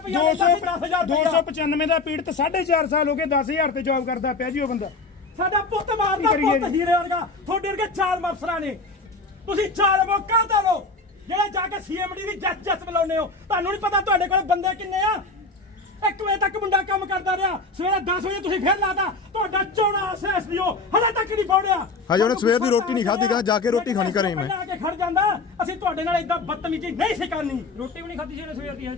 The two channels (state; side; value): quieter; right; 3.6 dB